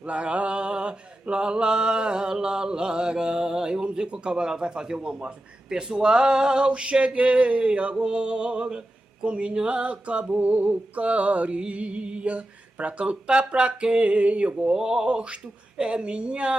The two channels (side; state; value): both; normal; correlation 0.91